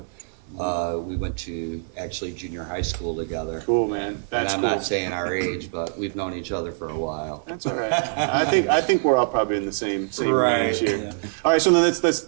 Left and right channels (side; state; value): left; silent; 62 dB below the other